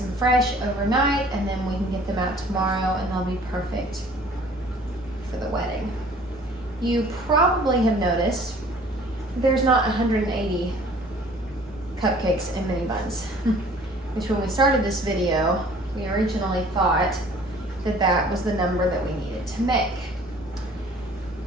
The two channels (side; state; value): both; normal; correlation 0.52